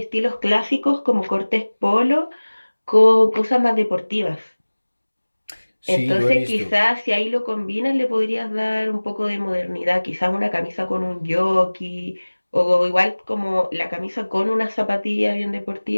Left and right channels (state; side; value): inverted; both; correlation -1.00